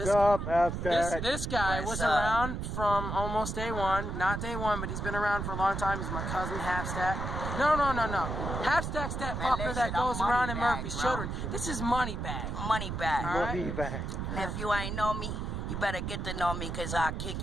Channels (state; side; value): noise; right; rumble, 4 dB below the sound